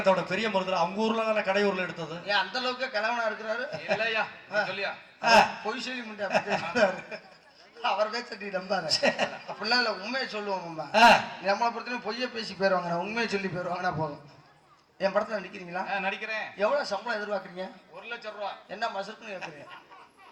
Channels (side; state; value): both; identical; correlation 1.00